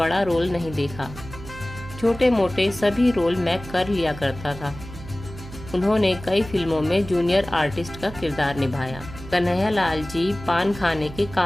रोल नहीं देखा। छोटे मोटे सभी रोल मैं कर लिया करता था। उन्होंने कई फिल्मों में जूनियर आर्टिस्ट का किरदार निभाया। कन्हैया लाल जी पान खाने के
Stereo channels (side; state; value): right; noise; hum, 14 dB below the sound